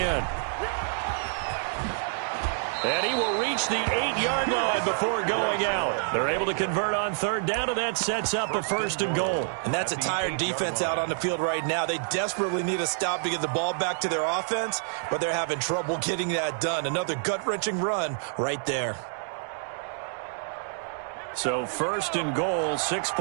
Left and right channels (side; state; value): left; silent; digital silence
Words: And he will reach the 8-yard line before going out. They're able to convert on 3rd down, and that sets up a 1st and goal. And that's a tired defense out on the field right now. They desperately need a stop to get the ball back to their offense, but they're having trouble getting that done. Another gut-wrenching run right there. So 1st and goal, 6